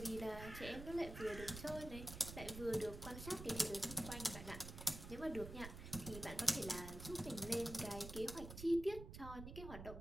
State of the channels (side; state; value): right; noise; rumble, 10 dB below the sound